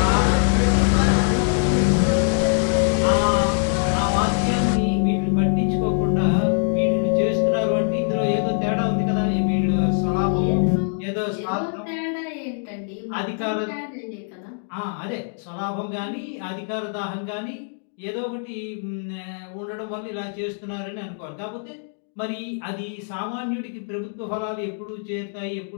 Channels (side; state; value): right; silent; 63 dB below the other